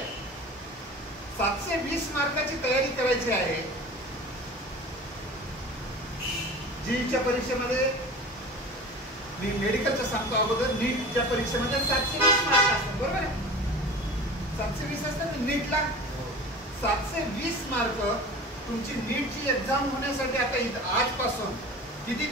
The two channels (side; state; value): both; normal; correlation 0.37